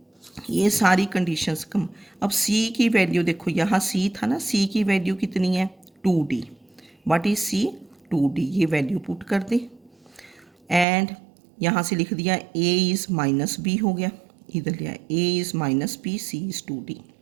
ये सारी conditions कम. अब C की value देखो, यहाँ C था ना, C की वैल्यू कितनी है? 2D. What is C? 2D. ये वैल्यू पुट कर दे एंड यहाँ से लिख दिया A इज़ माइनस B हो गया, इधर लिया A is minus B, C is 2D.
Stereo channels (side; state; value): left; drops out; at 10.9 s